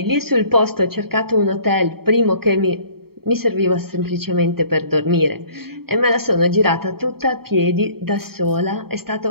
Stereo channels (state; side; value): late; left; 0.95 ms